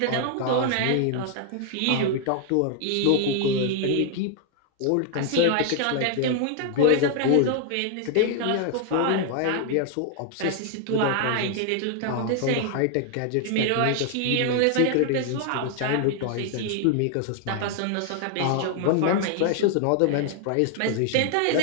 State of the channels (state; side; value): different; both; correlation 0.00